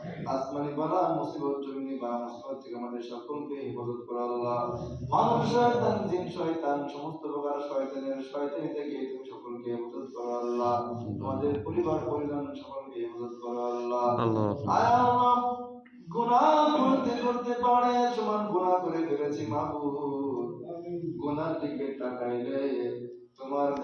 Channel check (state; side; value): identical; both; correlation 1.00